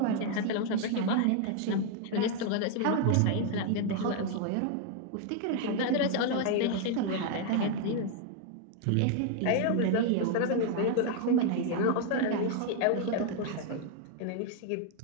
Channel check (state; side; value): different; both; correlation 0.00